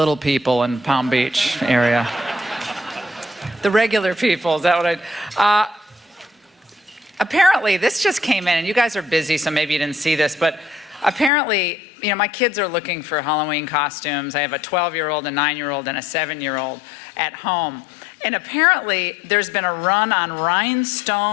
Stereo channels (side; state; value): right; drops out; at 11.3 s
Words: people in Palm Beach area. The regular people, is that what I... apparently, this just came in, and you guys are busy, so maybe you didn't see this, but apparently, you know, my kids are looking for Halloween costumes. I have a 12-year-old, a 9-year-old, and a 7-year-old at home. And apparently, there's been a run on